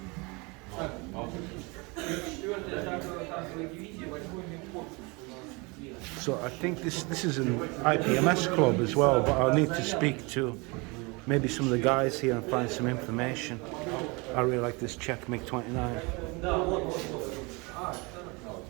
So I think this is an IPMS club as well, but I'll need to speak to maybe some of the guys here and find some information. I really like this Czech MiG-29.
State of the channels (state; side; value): quieter; left; 27.6 dB